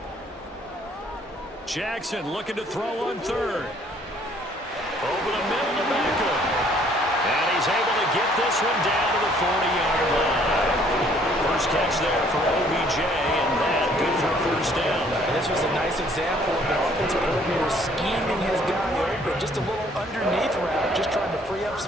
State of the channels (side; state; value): both; normal; correlation 0.61